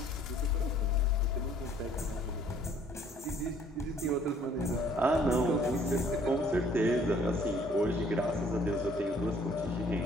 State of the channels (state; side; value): normal; both; correlation 0.59